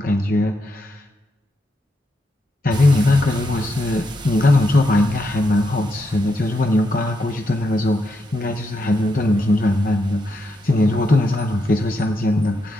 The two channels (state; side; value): normal; both; correlation 0.81